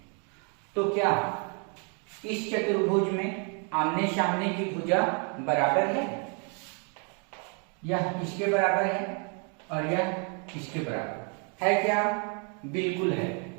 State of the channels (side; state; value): left; quieter; 38.0 dB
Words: तो क्या इस चतुर्भुज में आमने सामने की भुजा बराबर है? यह इसके बराबर है और यह इसके बराबर है क्या? बिल्कुल है।